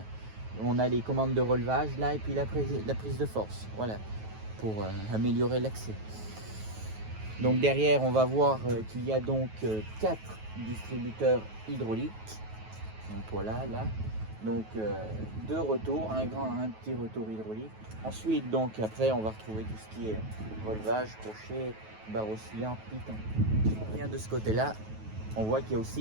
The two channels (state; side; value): late; left; 9.3 ms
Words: on a les commandes de relevage là et puis la prise de force, voilà, pour améliorer l'accès. Donc derrière on va voir qu'il y a donc 4 distributeurs hydrauliques. Donc voilà, là, donc 2 retours, un petit retour hydraulique. Ensuite, donc après, on va retrouver tout ce qui est relevage, crochet, barre oscillante, piton. Si on vient de ce côté-là, on voit qu'il y a